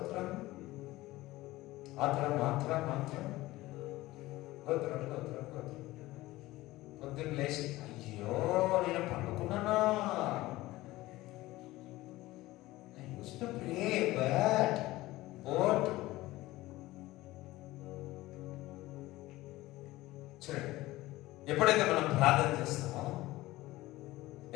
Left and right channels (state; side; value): quieter; right; 18.1 dB